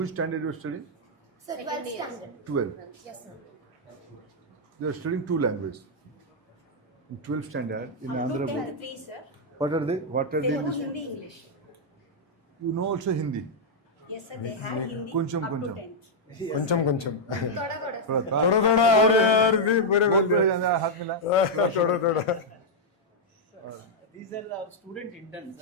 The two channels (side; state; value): both; normal; correlation -0.04